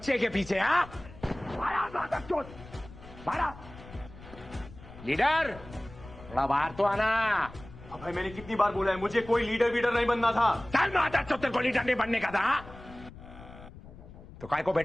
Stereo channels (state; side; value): noise; left; rumble, 17 dB below the sound